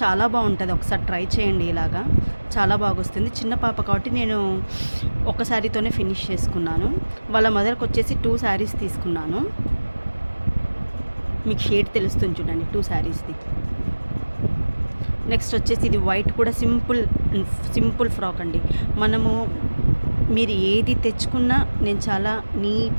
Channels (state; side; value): inverted; both; correlation -1.00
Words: చాలా బాగుంటుంది, ఒకసారి ట్రై చేయండి. ఇలాగా చాలా బాగా వస్తుంది. చిన్న పాప కాబట్టి నేను ఒక శారీతోనే ఫినిష్ చేసుకున్నాను. వాళ్ళ మదర్కి వచ్చేసి 2 శారీస్ తీసుకున్నాను. మీకు షేడ్ తెలుస్తుంది చూడండి, 2 శారీస్ది. నెక్స్ట్ వచ్చేసి ఇది వైట్ కూడా సింపుల్ ఫ్రాక్ అండి. మీరు ఏది తెచ్చుకున్నా నేను చాలా